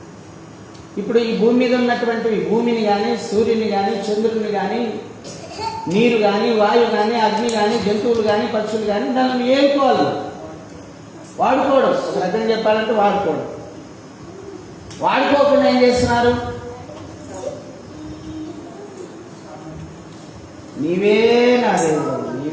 ఇప్పుడు ఈ భూమి మీద ఉన్నటువంటి భూమిని కానీ, సూర్యుని కానీ, చంద్రుని కానీ, నీరు కానీ, వాయువు కానీ, అగ్ని కానీ, జంతువులు కానీ, పక్షులు కానీ దాన్ని ఏలుకోవాలి, వాడుకోవడం. ఒక రకంగా చెప్పాలంటే వాడుకోవడం. వాడుకోకుండా ఏం చేస్తున్నారు? నీవే నా దేవుడు,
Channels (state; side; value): identical; both; correlation 1.00